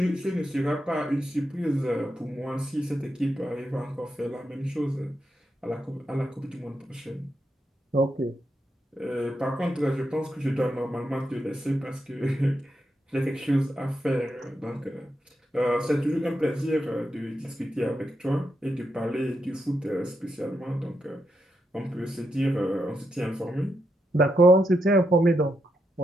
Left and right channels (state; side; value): normal; both; correlation 0.83